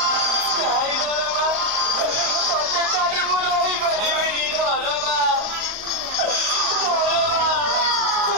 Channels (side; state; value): left; late; 38 ms